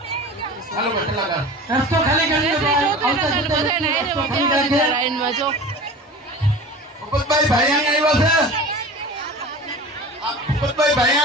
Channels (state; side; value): normal; both; correlation 0.36